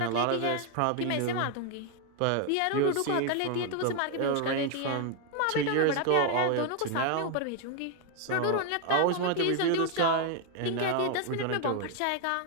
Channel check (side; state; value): both; different; correlation 0.01